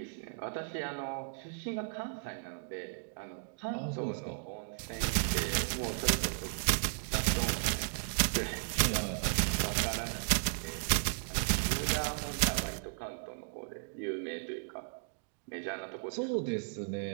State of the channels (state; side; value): silent; left; digital silence